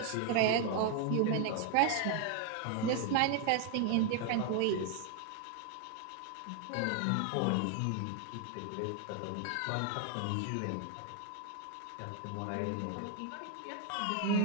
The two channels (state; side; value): different; both; correlation 0.00